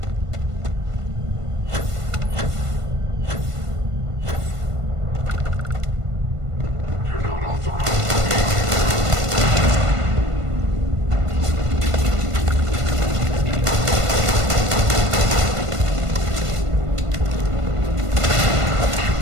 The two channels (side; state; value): left; late; 1.5 ms